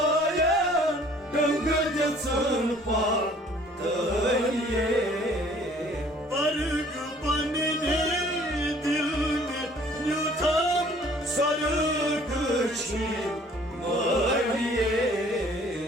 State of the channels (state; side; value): normal; both; correlation 0.55